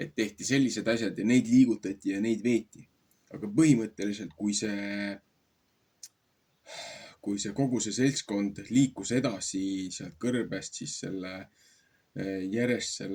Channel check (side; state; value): both; identical; correlation 1.00